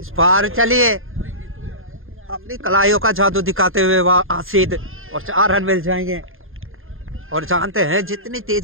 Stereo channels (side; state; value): left; late; 0.60 ms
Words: बार चलिए अपनी कलाइयों का जादू दिखाते हुए वह आसिद और 4 रन मिल जाएंगे। और जानते हैं जितनी